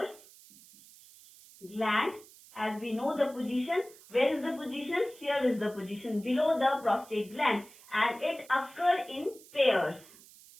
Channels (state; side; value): noise; right; hiss, 22 dB below the sound